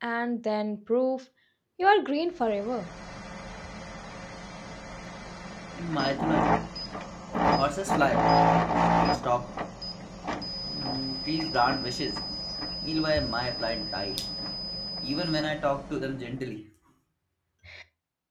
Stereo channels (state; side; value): identical; both; correlation 1.00